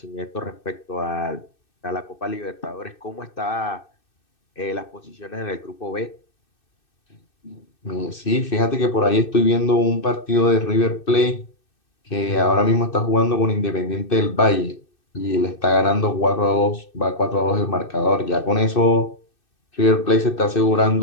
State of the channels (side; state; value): right; late; 2.6 ms